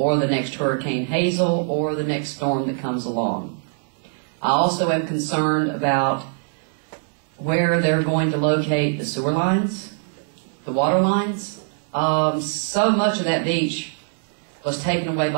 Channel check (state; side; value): silent; left; digital silence